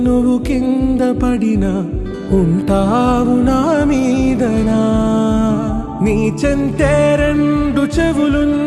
నువ్వు కింద పడినా ఉంటావు నా మీదనా. నీ చెంతే రెండు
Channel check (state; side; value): identical; both; correlation 1.00